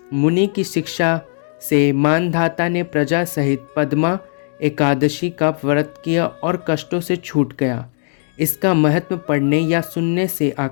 मुनि की शिक्षा से मानधाता ने प्रजा सहित पद्मा एकादशी का व्रत किया और कष्टों से छूट गया। इसका महत्व पढ़ने या सुनने से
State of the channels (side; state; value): right; silent; digital silence